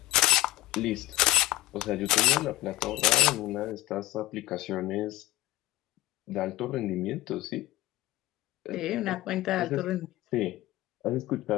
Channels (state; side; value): quieter; right; 17.6 dB